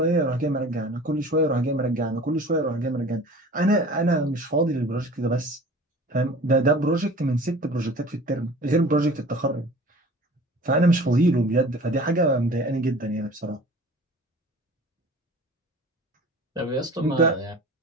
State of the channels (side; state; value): both; normal; correlation 0.43